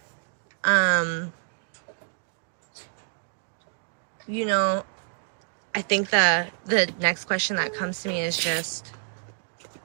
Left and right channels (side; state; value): left; silent; 58 dB below the other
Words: I think the next question that comes to me is just,